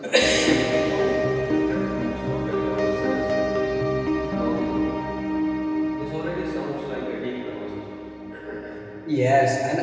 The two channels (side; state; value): both; identical; correlation 1.00